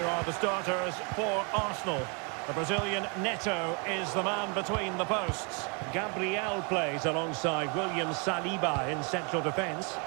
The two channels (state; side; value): quieter; left; 34.5 dB